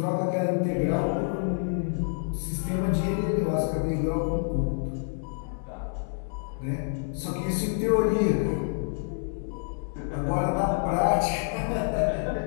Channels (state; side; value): silent; right; digital silence